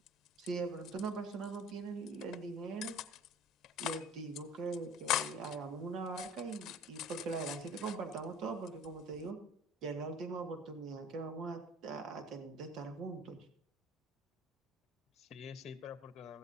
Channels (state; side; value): normal; both; correlation 0.46